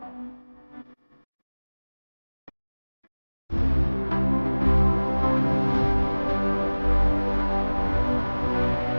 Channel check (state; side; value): inverted; both; correlation -1.00